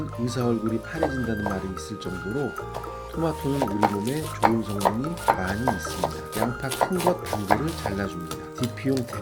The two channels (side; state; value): both; identical; correlation 1.00